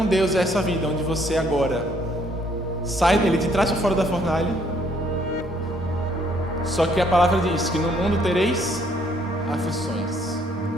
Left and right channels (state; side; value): normal; both; correlation 0.66